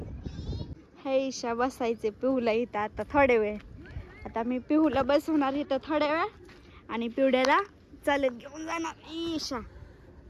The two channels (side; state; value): both; identical; correlation 1.00